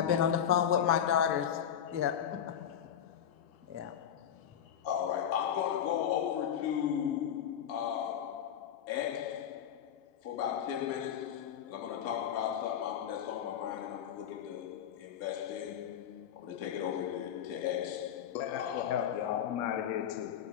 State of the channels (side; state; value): right; quieter; 9.3 dB